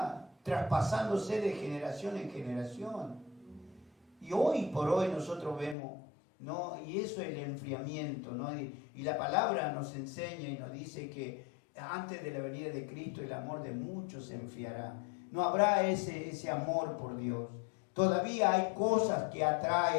traspasándose de generación en generación. Y hoy por hoy nosotros vemos, ¿no? Y eso es el enfriamiento, ¿no? Y la palabra nos enseña y nos dice que antes de la venida de Cristo el amor de muchos se enfriará. No habrá ese amor por Dios. Todavía hay cosas que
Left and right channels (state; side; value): drops out; right; at 5.8 s